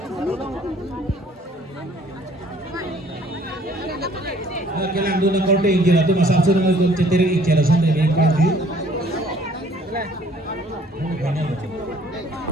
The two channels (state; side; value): normal; both; correlation 0.58